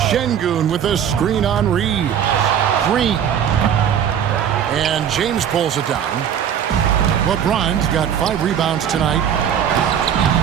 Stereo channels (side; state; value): left; quieter; 8.9 dB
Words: Şengün with a screen on Reeves. Green. And James pulls it down. LeBron's got 5 rebounds tonight.